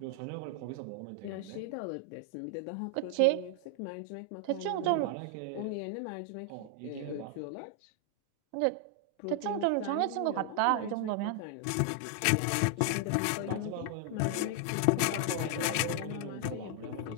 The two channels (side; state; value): both; different; correlation 0.00